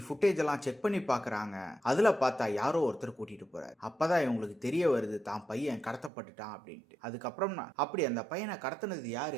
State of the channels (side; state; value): left; drops out; at 6.1 s